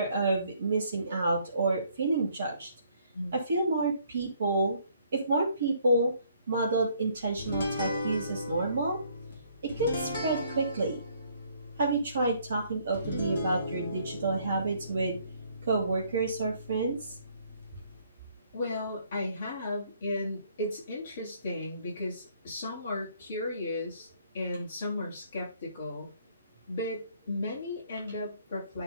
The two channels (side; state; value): both; inverted; correlation -0.65